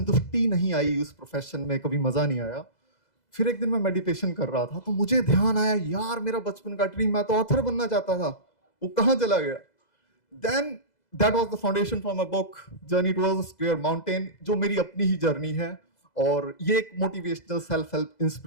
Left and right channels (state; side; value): late; right; 2.0 ms